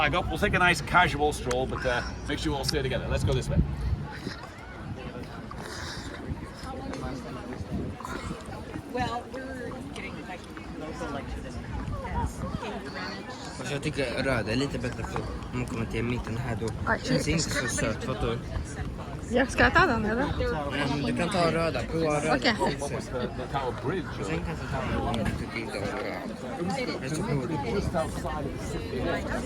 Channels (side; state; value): both; identical; correlation 1.00